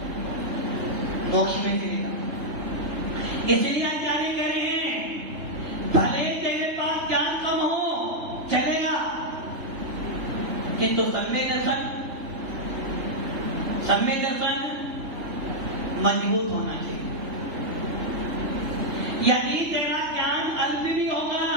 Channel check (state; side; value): late; left; 3.3 ms